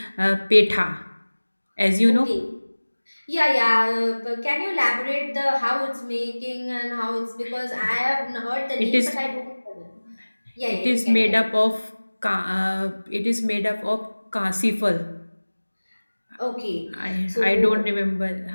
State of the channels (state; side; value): inverted; both; correlation -1.00